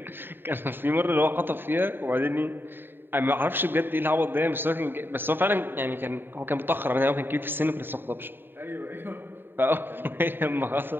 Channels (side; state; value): left; late; 0.097 ms